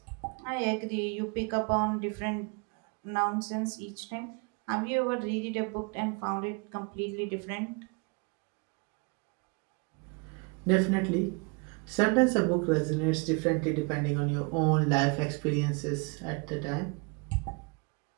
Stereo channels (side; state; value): left; quieter; 31.9 dB